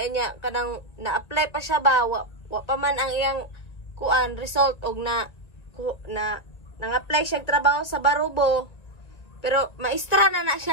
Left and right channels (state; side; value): late; right; 1.9 ms